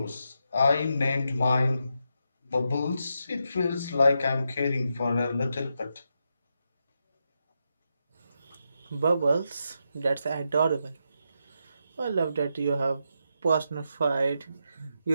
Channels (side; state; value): both; inverted; correlation -0.84